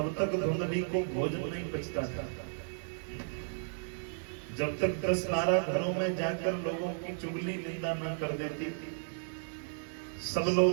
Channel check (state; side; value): silent; left; digital silence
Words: तक धुंधली को भोजन नहीं पचता था। जब तक 10-12 घरों में जाकर लोगों की चुगली निंदा न कर देती, सब